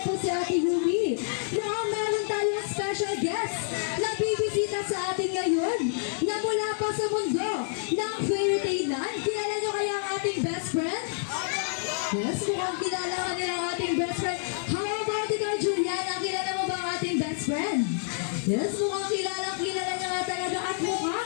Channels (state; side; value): silent; right; 59 dB below the other